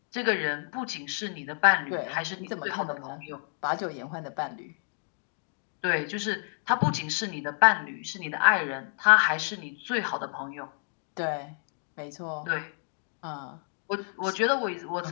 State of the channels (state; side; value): silent; right; 58 dB below the other